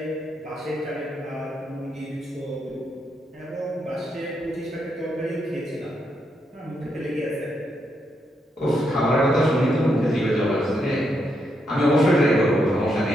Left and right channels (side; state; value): both; normal; correlation 0.80